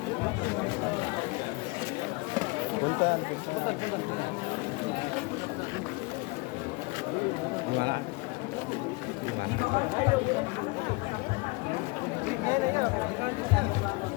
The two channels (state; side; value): quieter; right; 26.7 dB